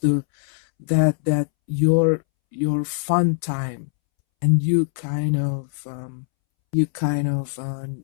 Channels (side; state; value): right; silent; 64 dB below the other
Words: that your fun time, and you kind of